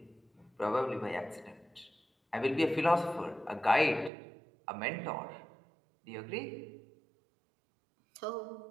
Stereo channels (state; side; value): drops out; left; at 4.1 s